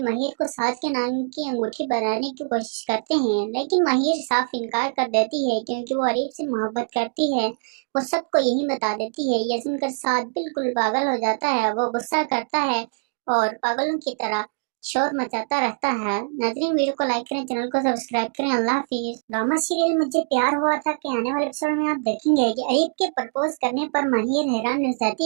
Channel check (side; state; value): left; silent; digital silence